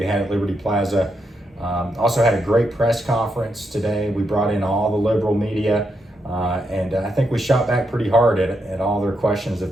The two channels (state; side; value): normal; both; correlation 0.82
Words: had at Liberty Plaza. Also had a great press conference today. We brought in all the liberal media, and I think we shot back pretty hard at all their questions